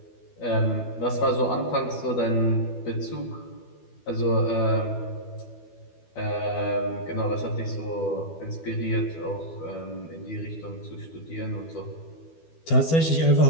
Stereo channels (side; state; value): right; late; 12 ms